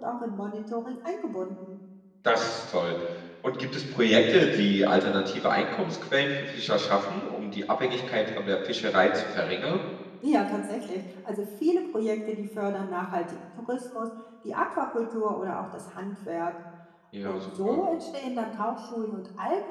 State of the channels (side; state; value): both; identical; correlation 1.00